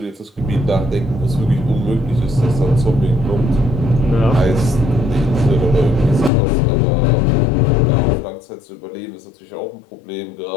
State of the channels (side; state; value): right; drops out; at 6.3 s